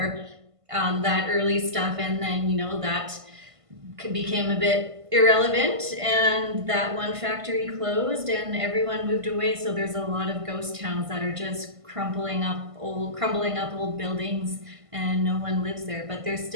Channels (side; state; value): left; late; 1.5 ms